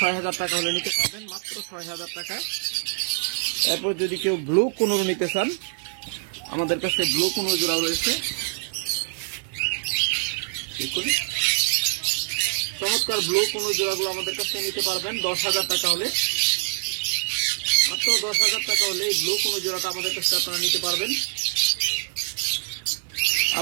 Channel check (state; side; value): silent; left; 55 dB below the other